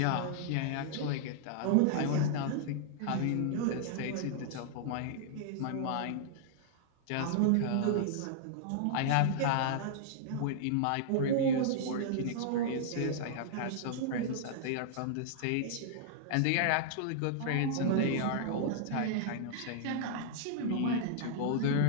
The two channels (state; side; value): different; both; correlation -0.01